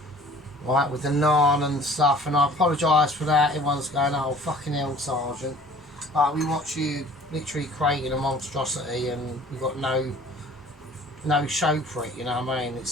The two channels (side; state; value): both; normal; correlation 0.49